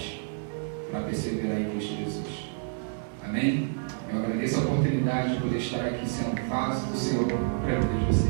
para perseverar em Cristo Jesus. Amém? Eu agradeço a oportunidade de poder estar aqui sendo vaso do Senhor para a vida de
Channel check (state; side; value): silent; left; 59 dB below the other